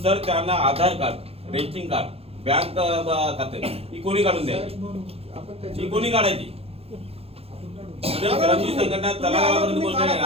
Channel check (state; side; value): late; left; 0.29 ms